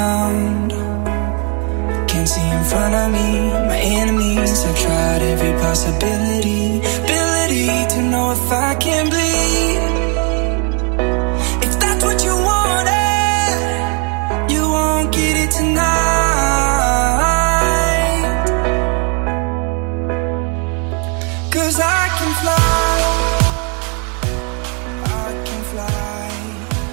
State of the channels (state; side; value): quieter; left; 36.8 dB